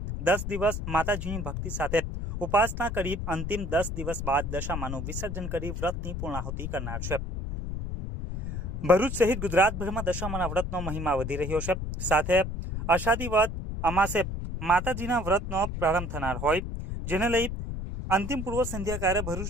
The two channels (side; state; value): left; noise; rumble, 5 dB below the sound